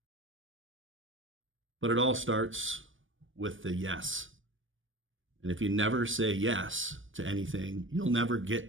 But it all starts with the yes. And if you never say yes to anything, you'll never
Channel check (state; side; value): late; left; 0.58 ms